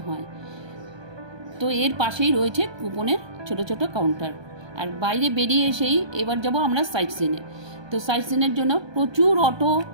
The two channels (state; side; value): late; left; 1.2 ms